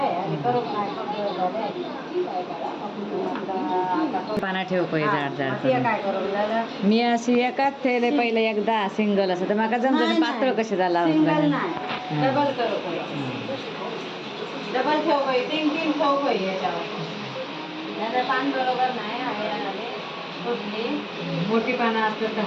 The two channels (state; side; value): identical; both; correlation 1.00